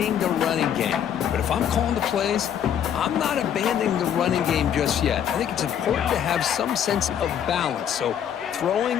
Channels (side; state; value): right; quieter; 9.2 dB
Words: the running game. But if I'm calling the plays, I'm not abandoning the running game just yet. I think it's important to have some sense of balance. So